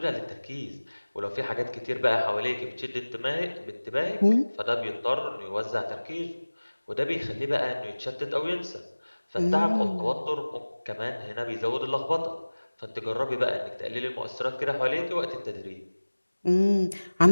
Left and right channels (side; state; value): both; inverted; correlation -1.00